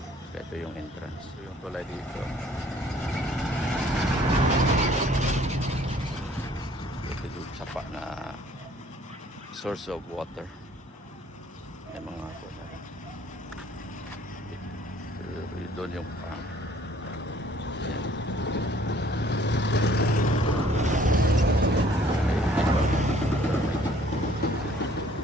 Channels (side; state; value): both; normal; correlation 0.58